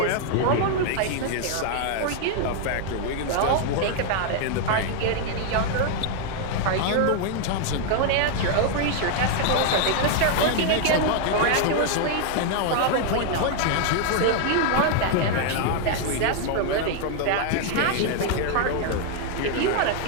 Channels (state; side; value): different; both; correlation 0.00